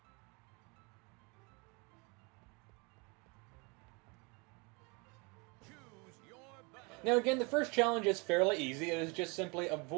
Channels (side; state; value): left; quieter; 29.9 dB